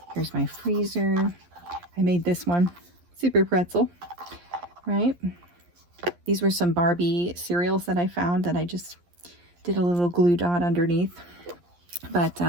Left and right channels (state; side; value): late; left; 11 ms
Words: Here's my freezer. I made this one, super pretzel, right? These were some Barbie cereals that I found that I just did a little glue dot underneath. But